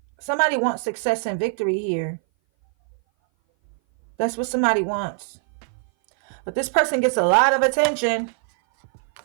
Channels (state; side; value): silent; left; 58 dB below the other